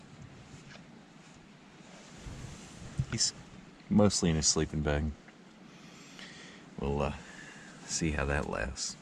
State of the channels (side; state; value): both; identical; correlation 1.00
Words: He's mostly in his sleeping bag. We'll see how that lasts.